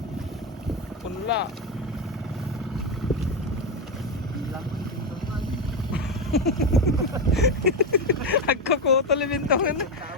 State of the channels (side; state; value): both; normal; correlation 0.12